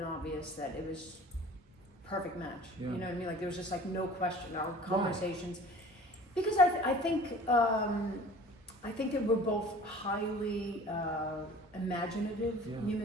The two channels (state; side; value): normal; both; correlation 0.45